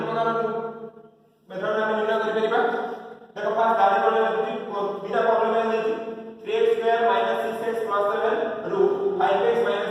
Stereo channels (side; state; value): both; identical; correlation 1.00